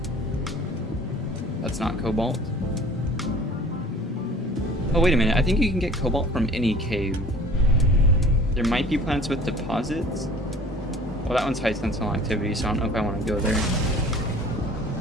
That's not cobalt. Oh, wait a minute. I think you can get cobalt from any cave. There might be planets with deposits. Well, that one's high sentinel activity, so I don't know if I want to go there.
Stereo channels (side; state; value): both; normal; correlation 0.48